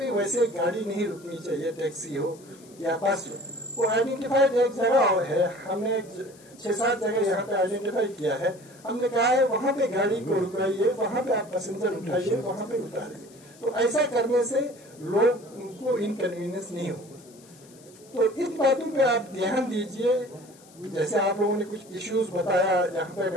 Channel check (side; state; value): left; noise; hiss, 25 dB below the sound